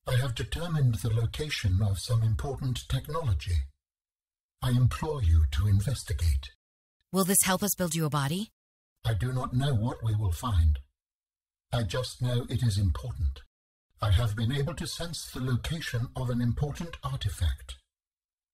I have determined the location of some important technology. I implore you to investigate. Will this help us build you a body? I do not know what we will find. I just know it is important. I have been able to sense the location of an important artifact.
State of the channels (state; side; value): identical; both; correlation 1.00